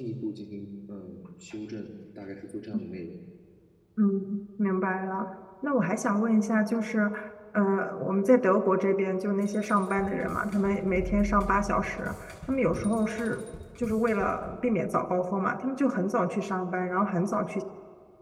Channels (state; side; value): identical; both; correlation 1.00